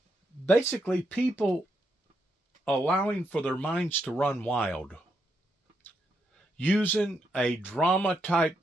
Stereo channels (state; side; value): normal; both; correlation 0.80